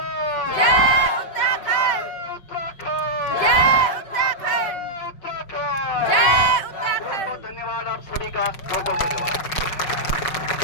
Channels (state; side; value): late; right; 5.5 ms